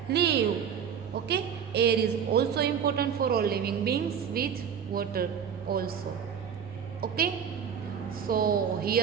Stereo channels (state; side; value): quieter; left; 7.8 dB